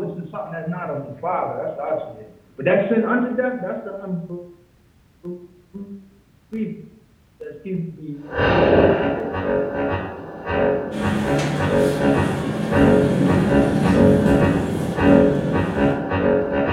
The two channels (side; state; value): both; identical; correlation 1.00